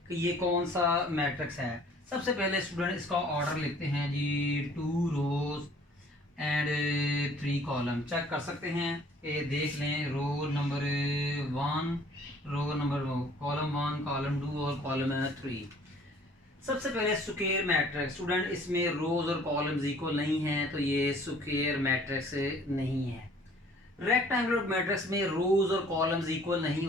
कि ये कौन सा मैट्रिक्स है। सबसे पहले स्टूडेंट इसका ऑर्डर लिखते हैं जी 2 रोज एंड 3 कॉलम। चेक कर सकते हैं ये देख लें row number 1 row number column 1 column 2 और कॉलम 3। सबसे पहले स्क्वायर मैट्रिक्स। स्टूडेंट इसमें रोज और कॉलम्स इक्वल नहीं है तो ये स्क्वायर मैट्रिक्स नहीं है। रेक्टेंगुलर मैट्रिक्स में रोज और कॉलम्स इक्वल नहीं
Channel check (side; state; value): both; normal; correlation 0.54